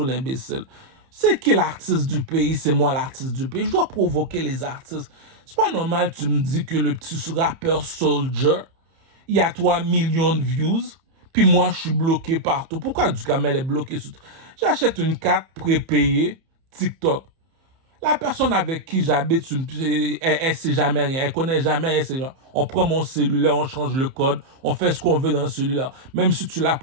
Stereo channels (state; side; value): late; left; 30 ms